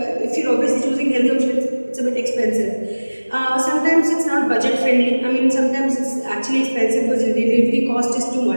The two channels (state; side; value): inverted; both; correlation -1.00